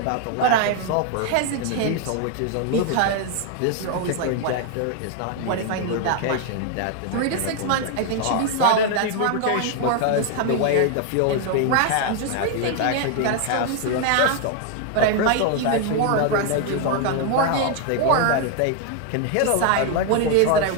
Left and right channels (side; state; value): both; different; correlation 0.00